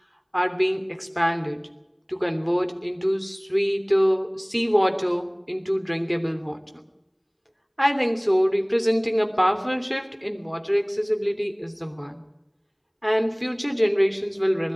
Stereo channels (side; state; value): both; identical; correlation 1.00